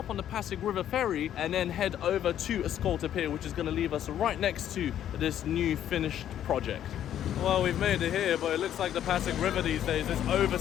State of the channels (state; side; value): quieter; right; 10.7 dB